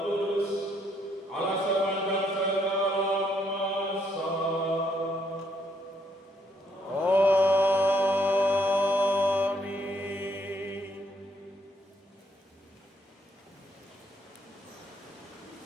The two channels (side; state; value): both; normal; correlation 0.72